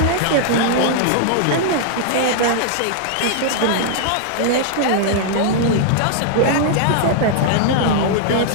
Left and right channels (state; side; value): different; both; correlation -0.01